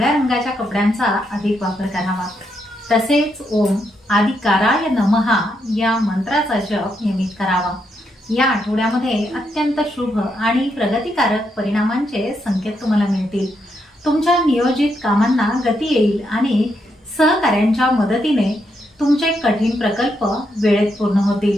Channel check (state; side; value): normal; both; correlation 0.80